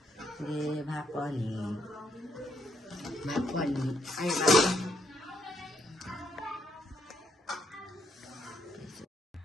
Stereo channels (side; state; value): both; normal; correlation 0.74